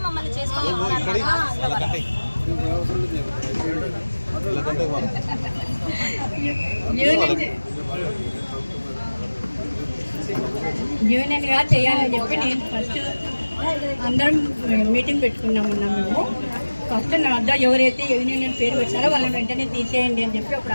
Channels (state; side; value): inverted; both; correlation -1.00